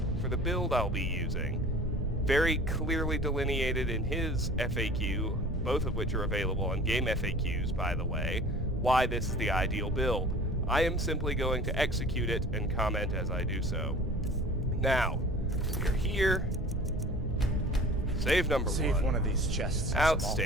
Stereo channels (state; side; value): normal; both; correlation 0.44